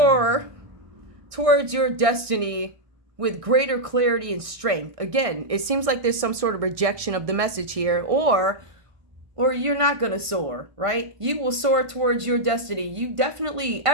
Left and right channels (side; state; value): left; late; 1.5 ms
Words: towards your destiny with greater clarity and strength. Again, it seems like there's some sort of rejection of the message here, or you're not going to soar, right? You will soar towards your destiny.